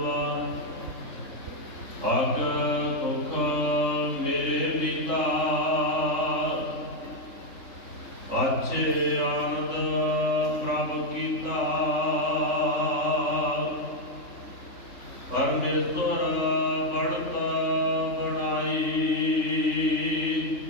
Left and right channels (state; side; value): late; right; 3.4 ms